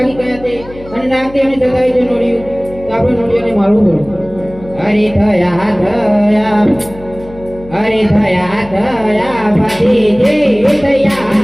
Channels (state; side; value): noise; left; hum, 18 dB below the sound